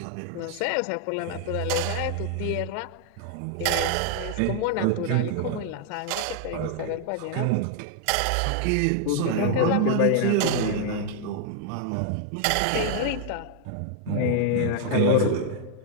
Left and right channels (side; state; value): both; different; correlation 0.00